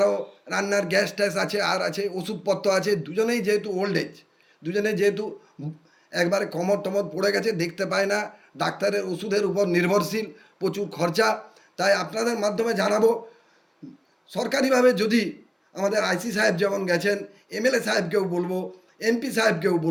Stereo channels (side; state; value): both; identical; correlation 1.00